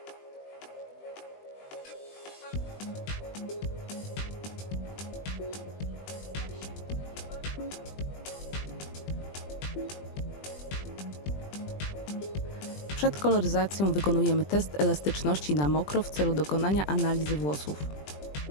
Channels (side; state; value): right; late; 20 ms